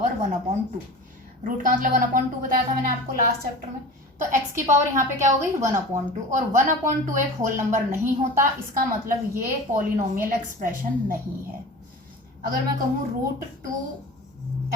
1/2। रूट का मतलब 1/2 बताया था मैंने आपको लास्ट चैप्टर में। तो x की पावर यहाँ पे क्या हो गई? 1/2, और 1/2 एक होल नंबर नहीं होता, इसका मतलब ये पॉलिनोमियल एक्सप्रेशन नहीं है। अगर मैं कहूँ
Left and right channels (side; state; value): both; normal; correlation 0.35